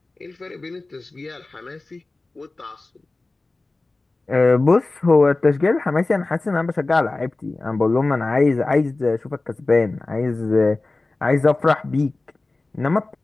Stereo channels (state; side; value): quieter; right; 3.2 dB